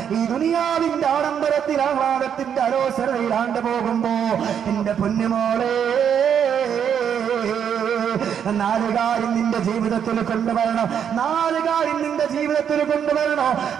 ഈ ദുനിയാവിന്റെ ആഡംബരത്തിൽ ആഹ്ലാദത്തിന്റെ അലോസരയിലാണ്ട് പോകുമ്പോ എന്റെ പൊന്നുമോളെ 4 കാര്യം നിന്റെ ജീവിതത്തിൽ കൊണ്ടുവരണം. 4 കാര്യം നിന്റെ ജീവിതത്തിൽ കൊണ്ടുവരണോ?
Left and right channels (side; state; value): left; quieter; 8.3 dB